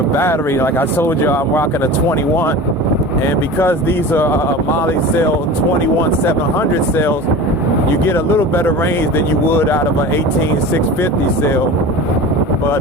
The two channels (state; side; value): normal; both; correlation 0.34